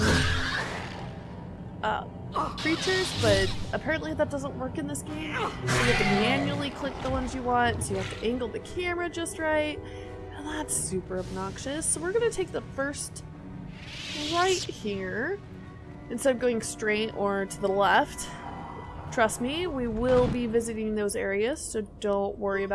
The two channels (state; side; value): identical; both; correlation 1.00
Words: creatures, but apparently that doesn't work in this game. So you have to manually click the ones you want, so you have to angle the camera just right. And that's super obnoxious. So we're going to take the first right here instead of going straight or to the left. Trust me, we will be visiting those areas, so don't worry